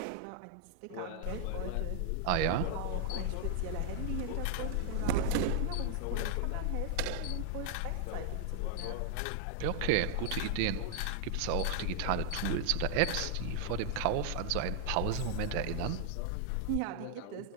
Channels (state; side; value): different; both; correlation -0.01